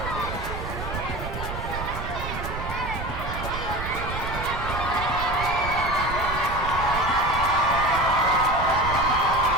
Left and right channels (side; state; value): right; noise; rumble, 7 dB below the sound